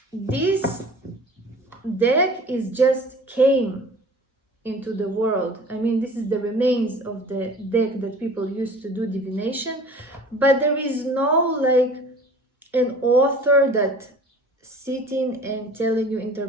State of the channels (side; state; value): both; normal; correlation 0.44